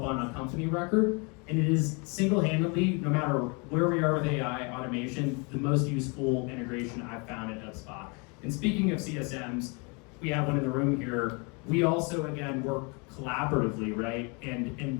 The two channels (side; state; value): right; quieter; 32.1 dB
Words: on a company record. And it is single-handedly, no matter where we are with AI automation, the most useful integration I've found at HubSpot. And speaking of CSMs, we have one in the room here. We also, again, work collaboratively, right?